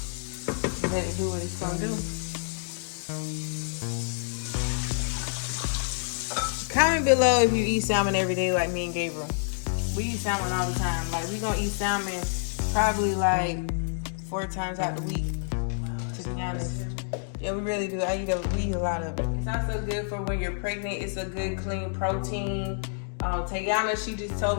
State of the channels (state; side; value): silent; right; digital silence